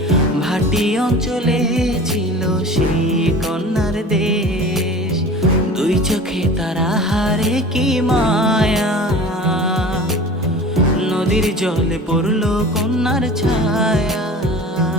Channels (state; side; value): normal; both; correlation 0.38